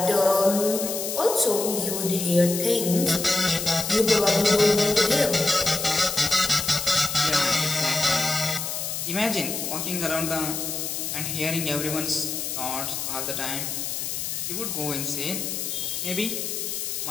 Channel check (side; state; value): left; noise; hiss, 4 dB below the sound